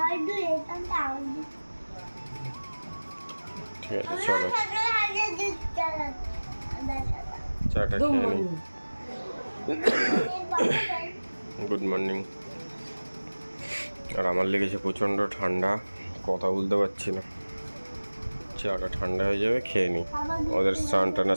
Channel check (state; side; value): inverted; both; correlation -1.00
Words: দুধ, এইখানটা আমার দুধ। ঠিক আছে চলো চাটা খেয়ে নিই। Good morning. আর আমার লেগেছে প্রচণ্ড ঠান্ডা, কথা বলতে পারছি না। চাটা ঠান্ডা হয়ে যাবে, খেয়ে নিই। ওদের স্নান টান